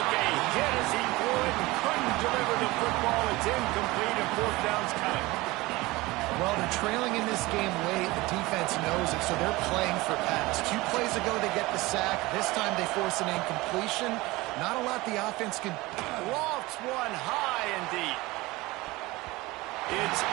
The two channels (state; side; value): quieter; left; 21.0 dB